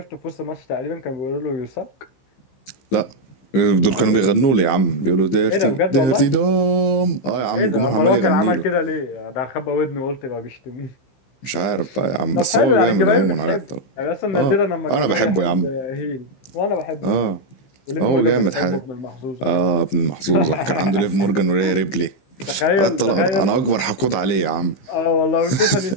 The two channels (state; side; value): late; right; 15 ms